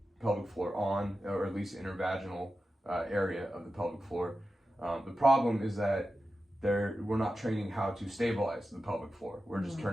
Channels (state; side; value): normal; both; correlation 0.92